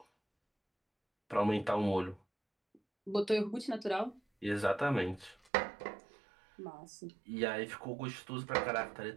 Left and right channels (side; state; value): left; drops out; at 5.5 s